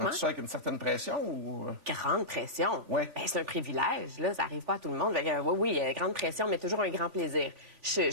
Donc, tu sais, avec une certaine pression ou... Grande pression. Ouais. Ben, c'est un privilège, là. Ça arrive pas à tout le monde. Oui, grande pression, mais toujours un grand plaisir.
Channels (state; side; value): late; left; 3.4 ms